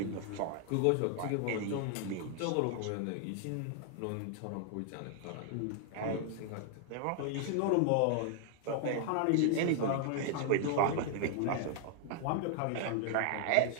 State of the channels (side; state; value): both; different; correlation 0.00